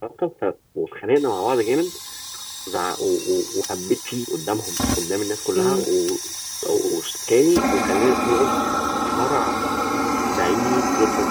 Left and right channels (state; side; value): identical; both; correlation 1.00